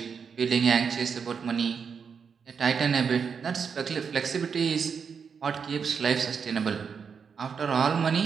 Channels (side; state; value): left; quieter; 6.3 dB